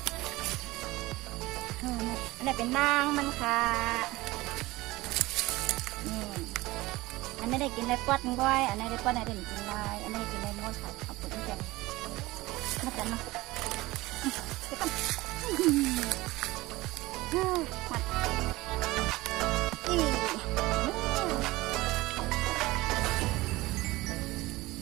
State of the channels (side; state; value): left; quieter; 19.7 dB